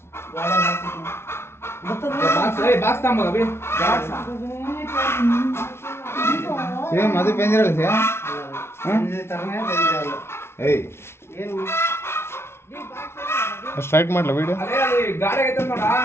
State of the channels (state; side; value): late; right; 0.12 ms